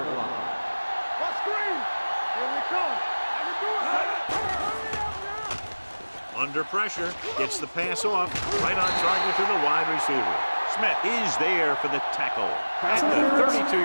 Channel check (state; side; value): inverted; both; correlation -1.00